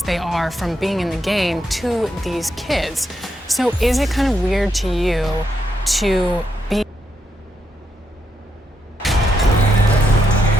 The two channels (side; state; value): both; normal; correlation 0.81